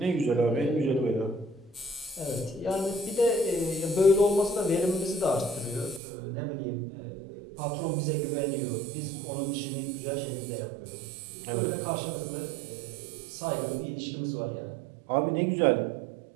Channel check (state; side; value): drops out; left; at 6.0 s